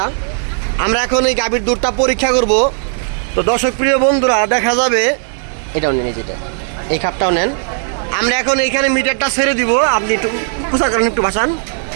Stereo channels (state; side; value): silent; left; 63 dB below the other